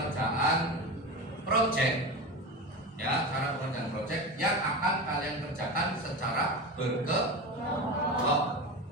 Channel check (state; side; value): normal; both; correlation 0.25